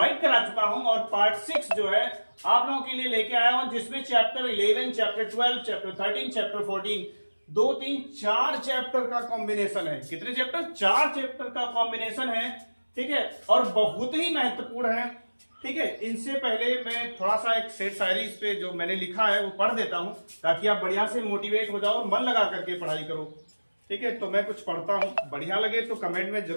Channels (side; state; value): both; inverted; correlation -1.00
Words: करा चुका हूं और पार्ट 6 जो है आप लोगों के लिए लेके आया हूं, जिसमें chapter 11, chapter 12, chapter 13, chapter 14 2, 3, 4 chapter का कॉम्बिनेशन है। कितने चैप्टर? 4 चैप्टर का कॉम्बिनेशन है, ठीक है। और बहुत ही महत्वपूर्ण है, ठीक है। इनसे पहले मैं थोड़ा सा एक शेर शायरी इस पे जो मैंने लिखा है वो पढ़ देता हूं, ताकि आप बढ़िया से मोटिवेट हो जाओ और मन लगा करके पढ़ाई करो, ठीक है। तो मैं कुछ पढ़ता हूं, बढ़िया लगे तो कमेंट में